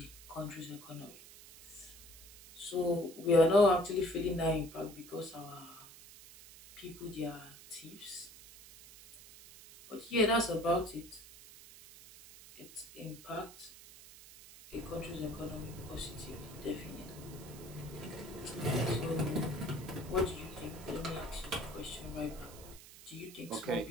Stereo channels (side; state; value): right; noise; hiss, 18 dB below the sound